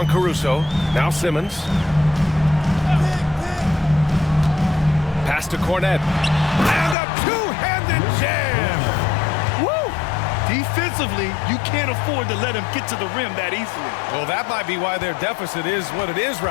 Caruso. Now Simmons. Pass to Cornette. And a two-handed jam. Woo! Defensively, you can't afford to let him get to the rim that easily. Well, that might be why their deficit is what it is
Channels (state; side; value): drops out; right; at 7.0 s